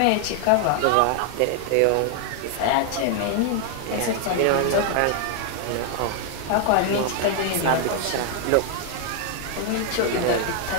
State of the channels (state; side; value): different; both; correlation 0.00